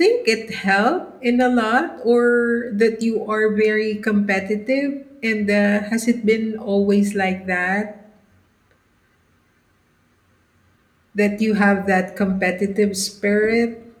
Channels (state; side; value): identical; both; correlation 1.00